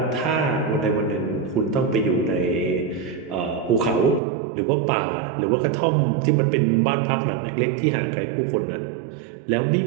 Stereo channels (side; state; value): left; drops out; at 4.2 s